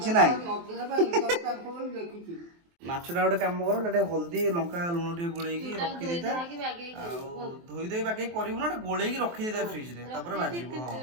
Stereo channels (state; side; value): late; left; 23 ms